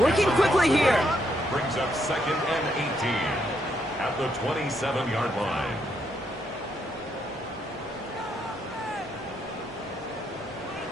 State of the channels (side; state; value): both; normal; correlation 0.76